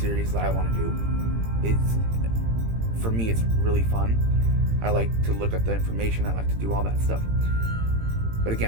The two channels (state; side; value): late; left; 18 ms